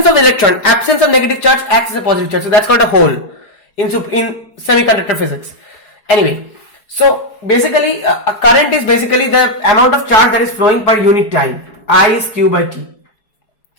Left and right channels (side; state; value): right; late; 4.7 ms